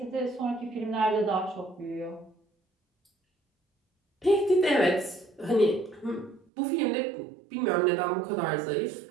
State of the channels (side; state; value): left; drops out; at 6.5 s